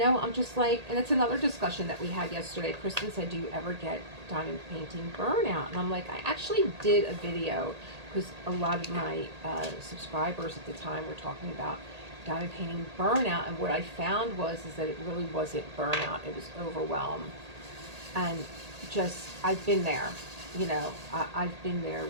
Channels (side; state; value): left; late; 1.8 ms